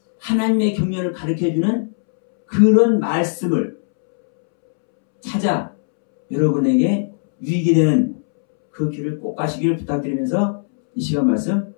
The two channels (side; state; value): right; silent; 67 dB below the other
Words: 하나님의 경륜을 가르쳐주는 그런 말씀을 찾아 여러분에게 유익이 되는 그 길을 꼭 가시기를 부탁드리면서 이 시간 말씀